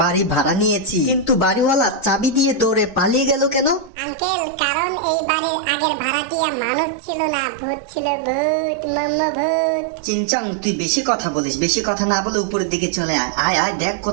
বাড়ি ভাড়া নিয়েছি, কিন্তু বাড়িওয়ালা চাবি দিয়ে দৌড়ে পালিয়ে গেল কেন? আঙ্কেল, কারণ এই বাড়ির আগের ভাড়াটিয়া মানুষ ছিল না, ভূত ছিল। ভূত, মাম্মা ভূত। চিংচাং, তুই বেশি কথা বলিস, বেশি কথা না বলে উপরের দিকে চলে আয়। আয় আয়, দেখ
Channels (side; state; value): left; drops out; at 3.9 s